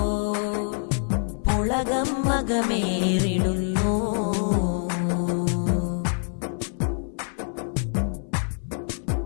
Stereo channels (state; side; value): silent; right; 61 dB below the other